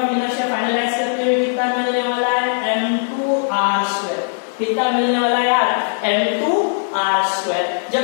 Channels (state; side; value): silent; right; digital silence